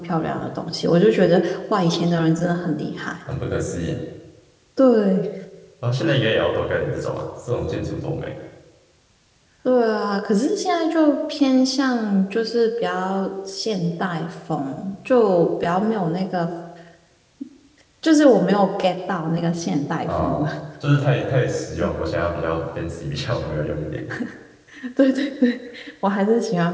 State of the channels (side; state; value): both; identical; correlation 1.00